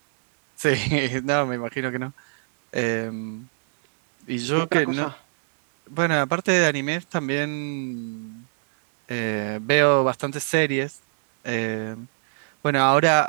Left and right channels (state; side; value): silent; left; digital silence